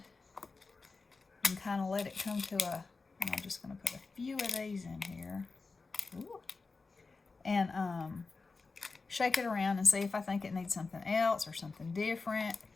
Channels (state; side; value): quieter; right; 4.1 dB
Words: and kind of let it come to and I'm just going to put a few of these in here. Ooh. And shake it around and see if I think it needs something else or something different,